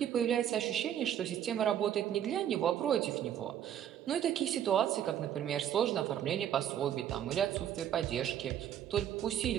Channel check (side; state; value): left; quieter; 10.3 dB